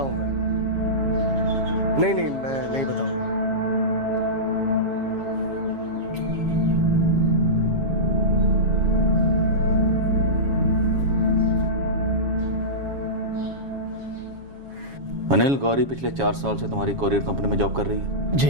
हूँ मैं। नहीं मैं नहीं बताऊंगा। अनिल, गौरी पिछले 4 साल से तुम्हारी कोरियर कंपनी में जॉब कर रही है?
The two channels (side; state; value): left; late; 7.3 ms